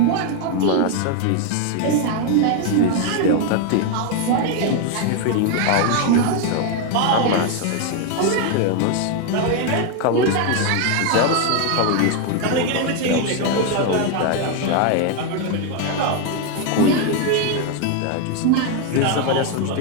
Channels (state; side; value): different; both; correlation 0.01